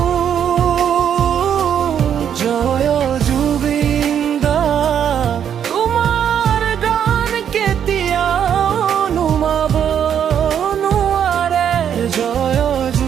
জয় জুবিন্দা, তোমাৰ গান কেতিয়াও নুমাব নোৱাৰে। জয়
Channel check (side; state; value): left; quieter; 8.8 dB